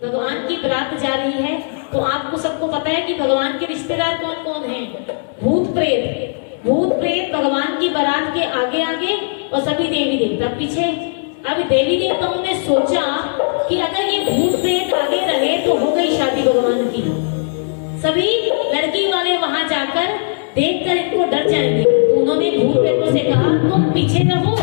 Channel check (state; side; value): silent; right; 68 dB below the other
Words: भगवान की बारात जा रही है। तो आपको सबको पता है कि भगवान के रिश्तेदार कौन कौन हैं? भूत प्रेत भगवान की बारात के आगे आगे और सभी देवी देवता पीछे। अब देवी देवताओं ने सोचा कि अगर ये भूत प्रेत आगे रहे तो हो गई शादी भगवान की। सभी लड़की वाले वहां जाकर देखकर इनको डर जाएंगे। तो उन्होंने भूत प्रेतों से कहा, तुम पीछे रहो